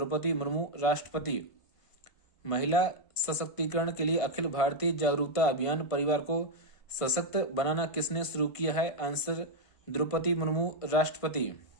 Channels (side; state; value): right; late; 1.5 ms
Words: मुर्मू, राष्ट्रपति। महिला सशक्तिकरण के लिए अखिल भारतीय जागरूकता अभियान परिवार को सशक्त बनाना किसने शुरू किया है? आंसर द्रौपदी मुर्मू, राष्ट्रपति।